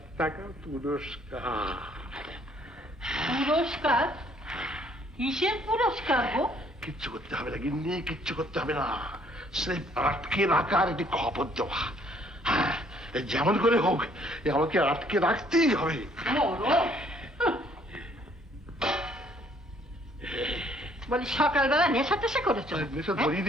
টাকা পুরস্কার। পুরস্কার? কিসের পুরস্কার গো? কিচ্ছু করতে হবে না গিন্নি, কিচ্ছু করতে হবে না। সে আটকে রাখার একটি খবর দেওয়া। হ্যাঁ, যেমন করে হোক আমাকে আটকে রাখতেই হবে। বলি সকালবেলা নেশা টেশা করেছো? নেশা ধরিয়ে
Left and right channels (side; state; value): both; normal; correlation 0.63